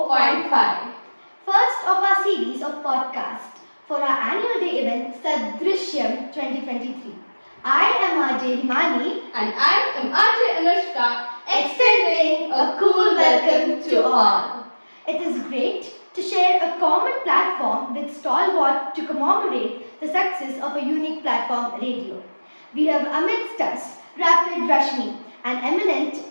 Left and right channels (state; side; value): inverted; both; correlation -1.00